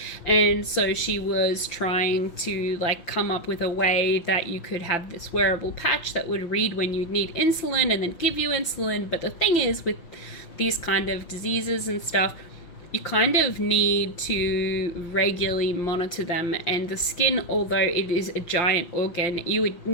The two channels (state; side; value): late; right; 5.8 ms